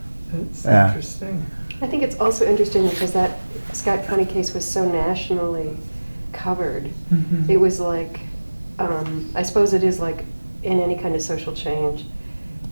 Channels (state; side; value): inverted; both; correlation -1.00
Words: it's Yeah. interesting. I think it's also interesting because that Scott County case was so nationally covered. Mhm. It was like, I suppose it is like in any kind of social change,